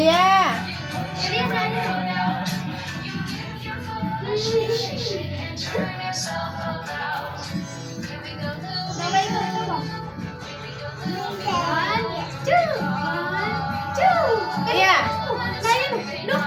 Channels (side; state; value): both; identical; correlation 1.00